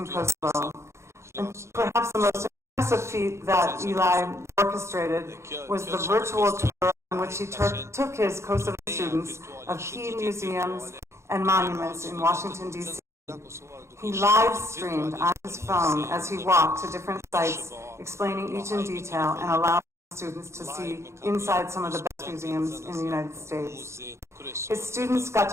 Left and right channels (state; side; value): late; left; 0.13 ms